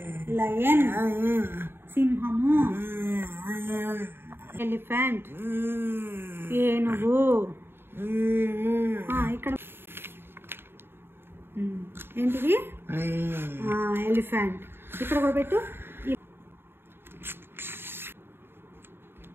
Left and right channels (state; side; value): late; left; 0.11 ms